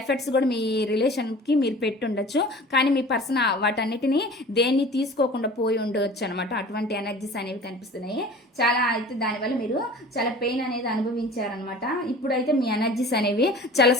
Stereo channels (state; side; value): normal; both; correlation 0.42